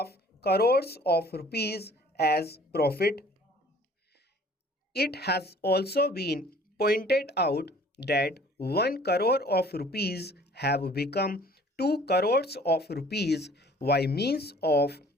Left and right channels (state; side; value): normal; both; correlation 0.52